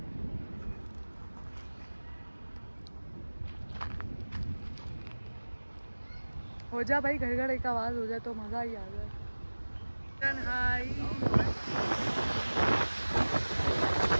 हो जा भाई, घर घर एक आवाज़ हो जाए तो मज़ा ही आ जाए। हाय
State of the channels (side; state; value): both; inverted; correlation -1.00